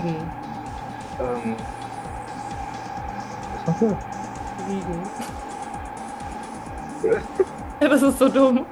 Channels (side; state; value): both; identical; correlation 1.00